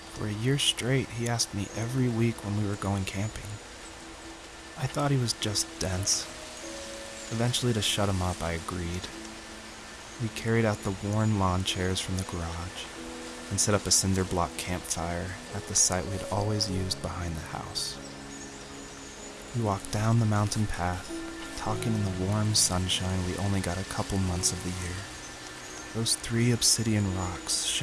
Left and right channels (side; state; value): both; identical; correlation 1.00